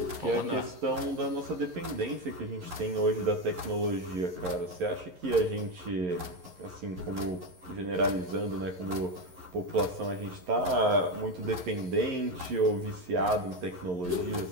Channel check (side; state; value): left; late; 11 ms